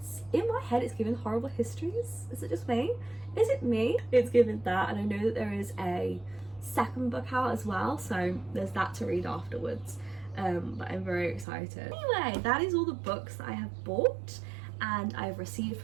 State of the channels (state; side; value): drops out; left; at 11.5 s